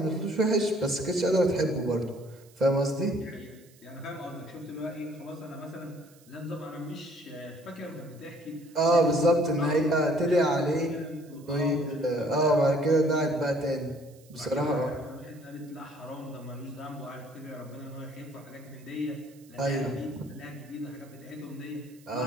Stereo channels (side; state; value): right; noise; hiss, 27 dB below the sound